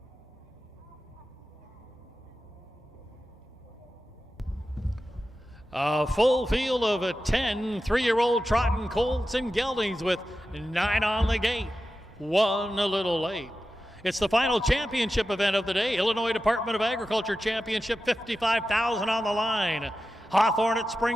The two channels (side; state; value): both; normal; correlation 0.92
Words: A full field of 10 3-year-old trotting colts and geldings with 9 on the gate. 1 a little late. It's the final championship event of the day. Illinois Department of Agriculture Championship, $55,000 on the line. Hawthorne at